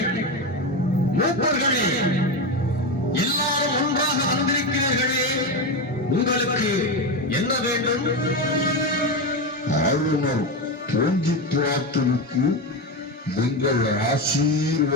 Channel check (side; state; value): both; normal; correlation 0.15